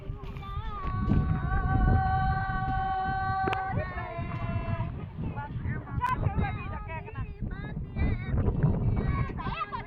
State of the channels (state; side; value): identical; both; correlation 1.00